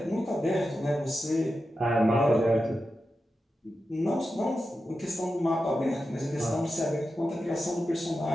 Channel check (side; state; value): both; normal; correlation 0.90